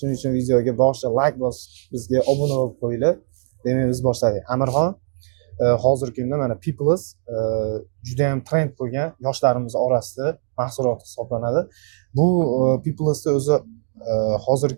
uchun videoga boshida like bosib, bizga obuna bo'lib qo'yinglar. Demak, biz boshladik. Amirxon hozirgi kunda mana People's juda ham trend bo'lgan yoshlarimiz orasida mahsulot hisoblanadi. Bu People'sda o'zi hozirgi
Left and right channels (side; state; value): left; silent; digital silence